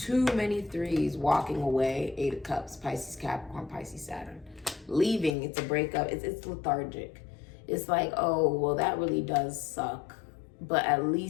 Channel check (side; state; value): right; drops out; at 5.4 s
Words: many threes. Walking away. Eight of Cups. Pisces, Capricorn, Pisces, Saturn. Leaving. It's a breakup. It's lethargic. It's like, oh, well, that really does suck. But at